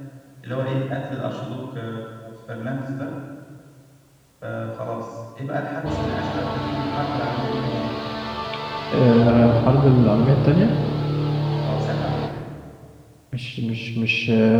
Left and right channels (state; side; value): identical; both; correlation 1.00